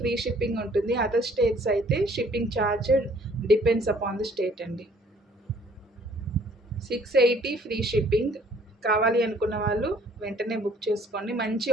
షిప్పింగ్ ఉంటుంది. అదర్ స్టేట్స్ అయితే shipping charge depends upon the state అండి. 680 ఫ్రీ షిప్పింగ్. కావాలి అనుకున్న వాళ్ళు వెంటనే బుక్ చేసుకోండి. మంచి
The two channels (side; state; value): both; normal; correlation 0.59